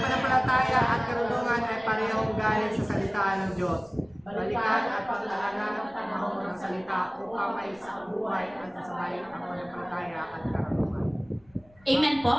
at karunungan ay parehong galing sa salita ng Diyos. Balikan at paglalagyan ng panahon ng salita upang may isang buhay at sasabay ang pananampalataya at karunungan. Amen po?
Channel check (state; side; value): noise; left; rumble, 28 dB below the sound